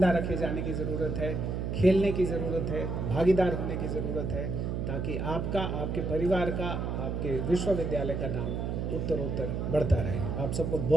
रखे जाने की ज़रूरत है, खेलने की ज़रूरत है, भागीदार होने की ज़रूरत है, ताकि आपका, आपके परिवार का, आपके विश्वविद्यालय का नाम उत्तरोत्तर बढ़ता रहे। आप सबको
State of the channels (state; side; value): noise; right; hum, 2 dB below the sound